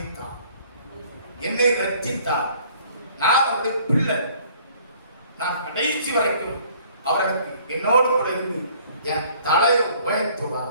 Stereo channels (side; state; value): both; inverted; correlation -0.57